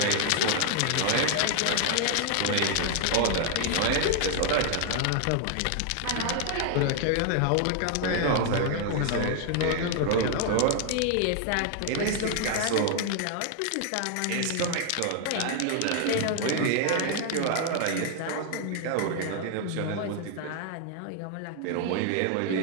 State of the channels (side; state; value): both; different; correlation 0.00